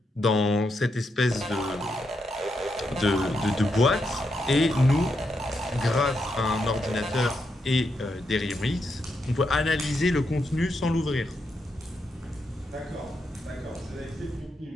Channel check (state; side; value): normal; both; correlation 0.82